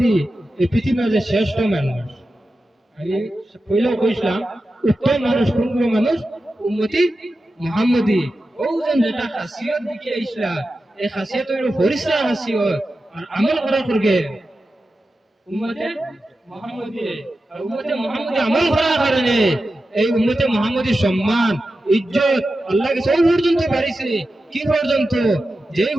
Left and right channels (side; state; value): both; normal; correlation 0.92